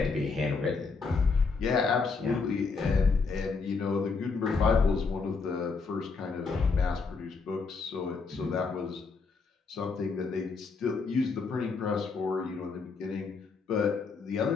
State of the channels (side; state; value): right; quieter; 4.6 dB